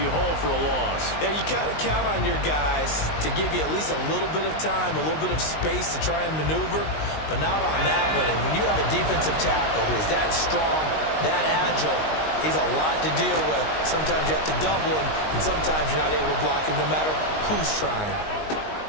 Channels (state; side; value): late; right; 19 ms